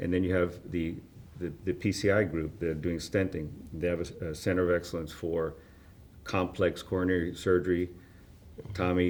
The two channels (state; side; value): identical; both; correlation 1.00